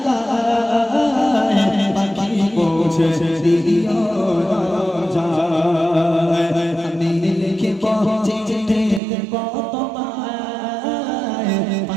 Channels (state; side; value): drops out; left; at 9.0 s